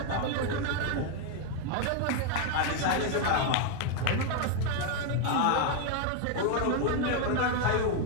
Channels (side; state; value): both; different; correlation 0.01